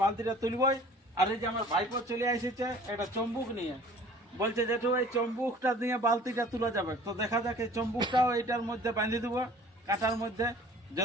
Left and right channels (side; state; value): both; normal; correlation 0.49